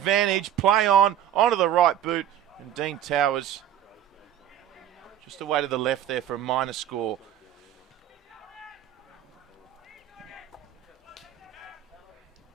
Play on. Onto the right boot. And Dean Towers just away to the left there for a minor score.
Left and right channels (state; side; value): quieter; left; 10.8 dB